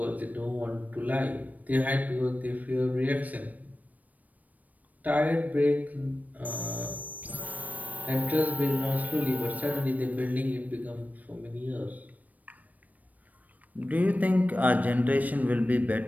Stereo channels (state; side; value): late; left; 0.075 ms